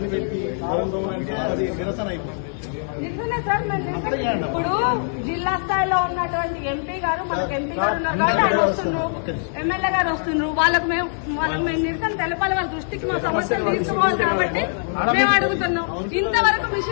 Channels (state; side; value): silent; right; digital silence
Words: పెట్టి గౌరవంతో అది నిరసన అయిపోతుంది. నిజమే సార్. ఇప్పుడు జిల్లా స్థాయిలో ఉన్నటువంటి ఎంపీ గారు మనకు ఎంపీ గారు ఉన్నారు కాబట్టి ఆయన వస్తున్నారు, ఎమ్మెల్యే గారు వస్తున్నారు. వాళ్ళకు మేము నిరసన తెలపాలి, వాళ్ళ దృష్టికి మా సమస్యలు తీసుకోవాలి కాబట్టి మేము అడుగుతున్నాం. ఇంతవరకు